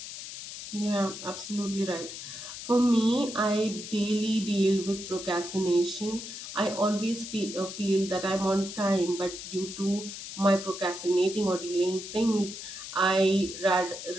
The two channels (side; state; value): left; noise; hiss, 10 dB below the sound